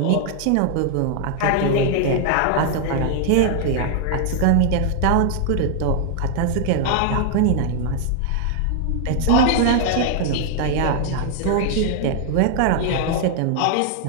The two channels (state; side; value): different; both; correlation 0.00